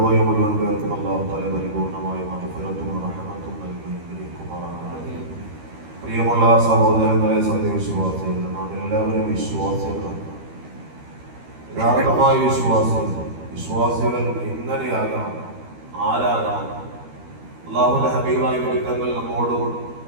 മുഴുവൻ പേർക്കും അല്ലാഹു തആല പരിപൂർണമായ മഗ്ഫിറത്തും റഹ്മത്തും നൽകി അനുഗ്രഹിക്കുമാറാകട്ടെ. പ്രിയമുള്ള സഹോദരങ്ങളെ, സത്യവിശ്വാസികൾ, നാം എല്ലാവരും വിശ്വാസികളാണ്. യഥാർത്ഥമായ വിശ്വാസികൾ എങ്ങനെയാകാം, ആരാകാം? അല്ലാഹുവിന്റെ ഹബീബായ വിരുദ്ധങ്ങൾ നമ്മോട്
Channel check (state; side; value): late; left; 13 ms